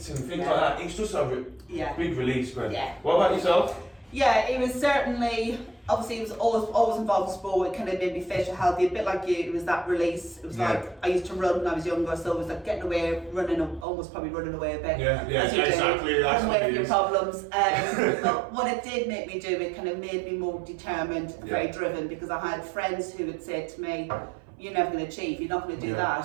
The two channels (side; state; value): left; drops out; at 13.9 s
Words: and things like that. It's just a big release, man. Yeah. What about yourself? Yeah, it was certainly, obviously it was always involved in sport. It kind of made me fit and healthy, a bit like you. It was that release. It was like, I used to run when I was younger, so it was like getting away, almost probably running away a bit. Exactly. Running away from your problems. But what it did make me do, it kind of made me more determined, very driven, because I had friends who would say to me, you're never going to achieve. You're not going to do